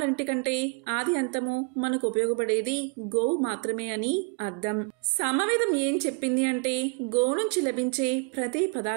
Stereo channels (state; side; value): quieter; left; 30.7 dB